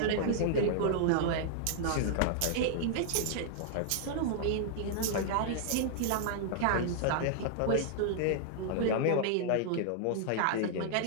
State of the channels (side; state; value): both; different; correlation -0.01